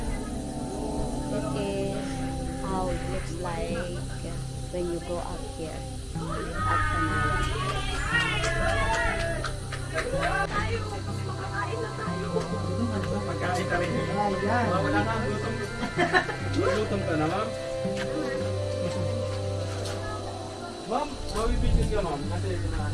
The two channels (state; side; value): identical; both; correlation 1.00